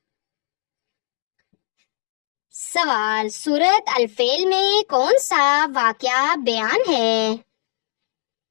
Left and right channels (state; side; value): silent; right; digital silence